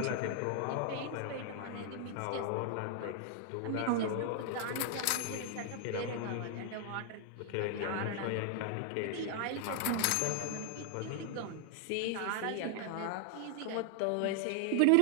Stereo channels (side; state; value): both; different; correlation 0.00